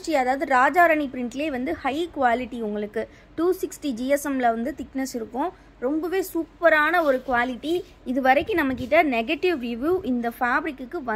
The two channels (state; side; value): identical; both; correlation 1.00